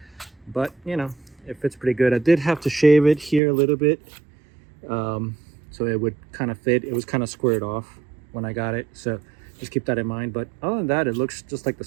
But you know, it fits pretty good. I did have to shave it here a little bit so it would kind of fit. It was kind of squared off when I got it, so just keep that in mind. But other than that, it looks just like the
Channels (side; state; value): left; drops out; at 3.4 s